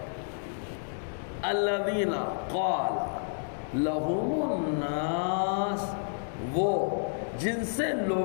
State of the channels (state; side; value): silent; right; digital silence